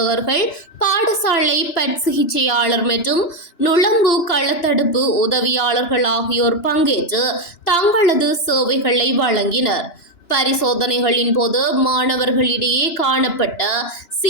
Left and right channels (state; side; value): late; right; 2.9 ms